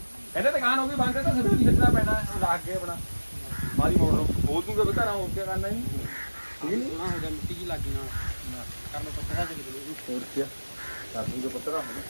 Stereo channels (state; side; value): inverted; both; correlation -1.00